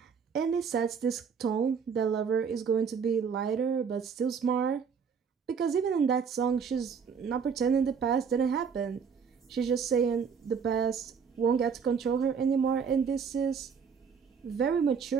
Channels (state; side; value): quieter; left; 6.3 dB